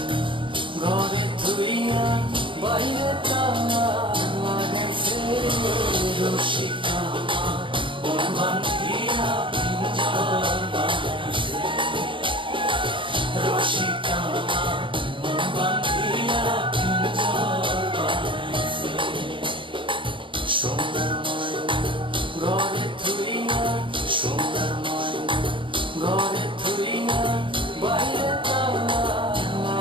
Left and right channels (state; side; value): late; left; 0.24 ms